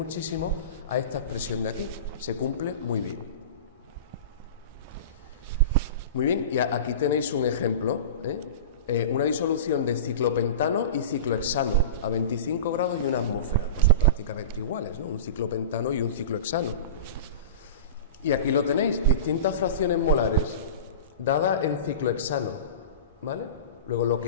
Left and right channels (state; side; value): inverted; both; correlation -0.31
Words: a esta expresión de aquí. Se cumple muy bien. Muy bien, y aquí tenéis un ejemplo, una disolución de ciclopentano y ciclohexano a 25 grados y una atmósfera. Pues son prácticamente iguales, ¿no? Un ciclopentano y un ciclohexano. Y aquí lo tenéis, distintas fracciones molares dadas en ciclohexano, ¿vale? Luego lo